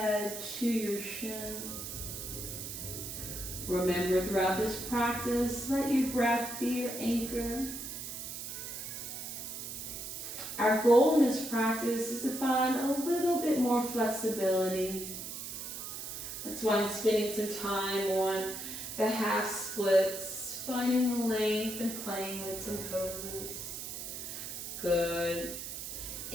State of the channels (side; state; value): right; noise; hiss, 7 dB below the sound